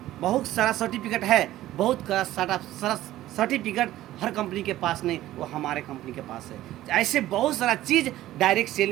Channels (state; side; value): quieter; left; 14.7 dB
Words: बहुत सारा सर्टिफिकेट हर कंपनी के पास नहीं, वो हमारे कंपनी के पास है। ऐसे बहुत सारा चीज़ डायरेक्ट